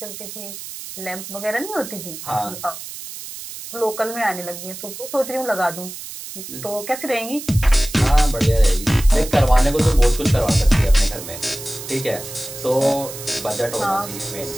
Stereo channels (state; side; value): noise; right; hiss, 11 dB below the sound